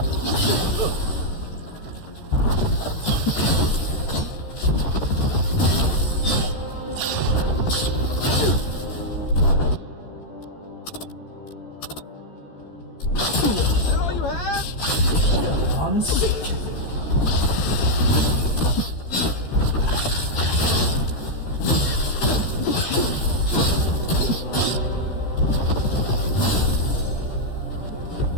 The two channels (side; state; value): right; late; 13 ms